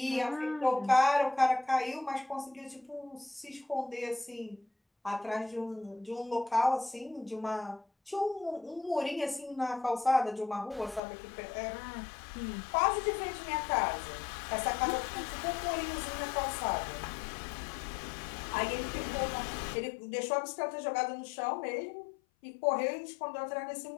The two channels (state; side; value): drops out; right; at 11.0 s